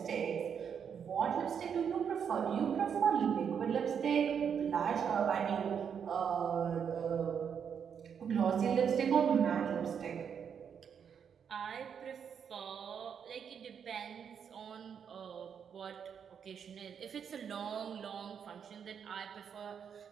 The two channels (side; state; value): left; quieter; 7.4 dB